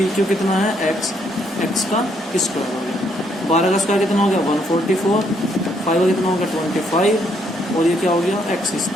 क्यू कितना है एक्स का स्क्वायर हो गया। 12 का स्क्वायर कितना हो गया 144, 5 का कितना हो गया 25, और ये क्या हो गया एक्स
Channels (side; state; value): both; normal; correlation 0.71